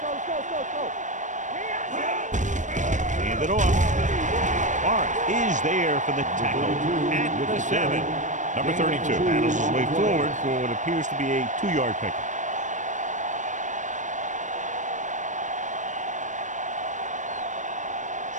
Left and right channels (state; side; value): late; left; 0.36 ms